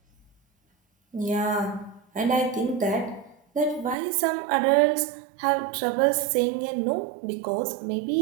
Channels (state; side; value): drops out; left; at 4.0 s